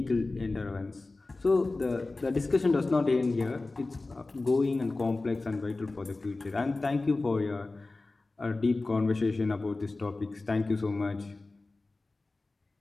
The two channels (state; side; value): quieter; right; 3.3 dB